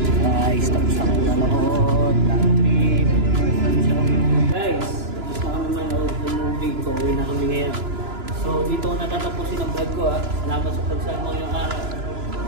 Guys, tapos na kami manood ng trip. Guys, tapos na kami manood ng movie. Pauwi na kami ngayon. So, dito ko natatapusin ang vlog ko, ha. Salamat sa pagsama ngayong araw.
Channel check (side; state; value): left; late; 2.9 ms